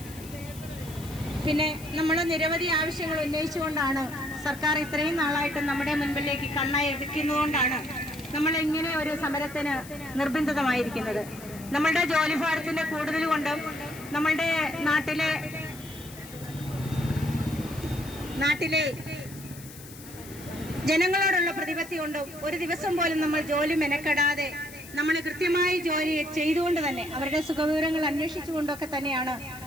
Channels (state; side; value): noise; left; hiss, 17 dB below the sound